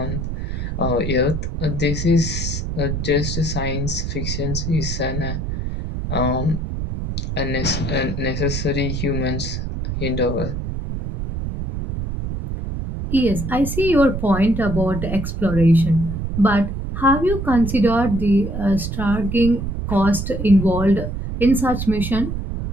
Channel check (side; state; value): right; noise; rumble, 4 dB below the sound